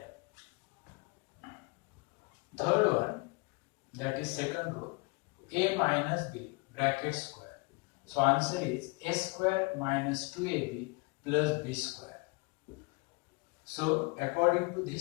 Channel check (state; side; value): quieter; right; 28.3 dB